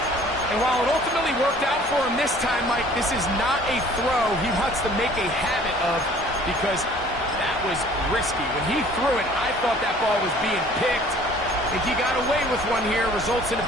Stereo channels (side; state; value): both; normal; correlation 0.52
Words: And while it ultimately worked out for him this time, Mike, this is not a throw he wants to make a habit of, because that was risky. When he threw it, I thought that ball was being picked. I think he got away with one here, results in a